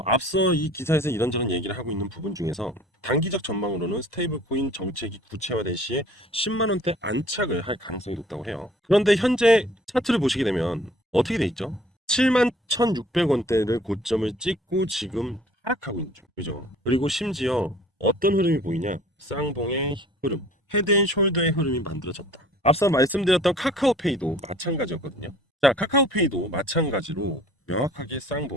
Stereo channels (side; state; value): both; normal; correlation 0.52